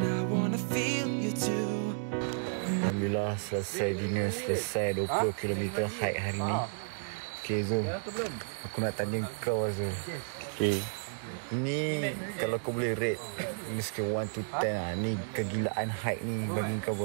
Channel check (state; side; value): silent; left; digital silence